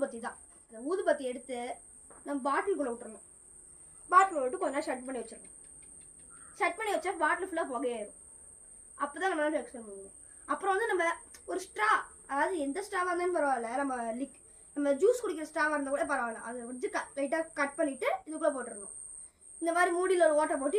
தான். அந்த ஊதுபத்தி எடுத்து நம்ம பாட்டிலுக்குள்ள விட்டுறணும். பாட்டில் விட்டு கொஞ்ச நேரம் ஷட் பண்ணி வச்சிடணும். ஷட் பண்ணி வச்சா பாட்டில் ஃபுல்லாக புகையாயிரும். அப்போ தான் நம்மளால எக்ஸ்பிளைன் பண்ணுவோம். அப்புறம் வந்து நம்ம ஒரு ஸ்ட்ரா, அதாவது எந்த ஸ்ட்ராவாக இருந்தாலும் பரவாயில்ல, நம்ம ஜூஸ் குடிக்கிற ஸ்ட்ராவாக இருந்தால் கூட பரவாயில்ல, அதை வச்சு லைட்டாக கட் பண்ணிவிட்டு இதுக்குள்ளே போட்டுடணும். இந்த மாதிரி மூடியில் ஒரு ஓட்டை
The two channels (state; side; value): identical; both; correlation 1.00